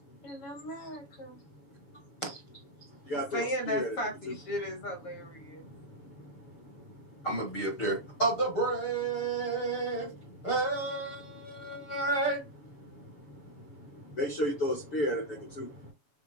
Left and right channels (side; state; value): right; late; 7.1 ms